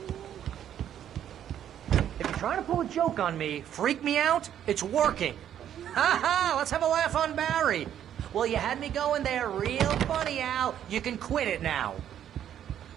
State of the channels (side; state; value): left; quieter; 10.2 dB